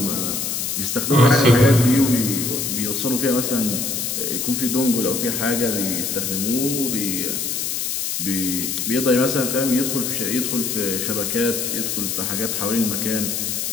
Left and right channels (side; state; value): left; noise; hiss, 2 dB below the sound